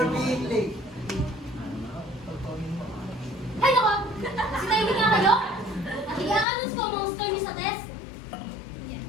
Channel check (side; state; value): right; drops out; at 6.5 s